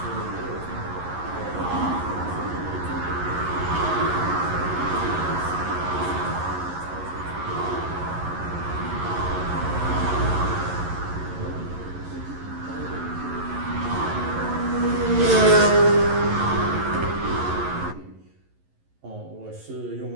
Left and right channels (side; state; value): left; late; 11 ms